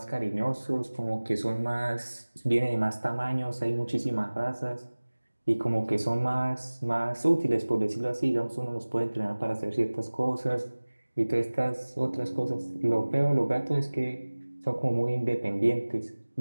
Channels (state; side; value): inverted; both; correlation -1.00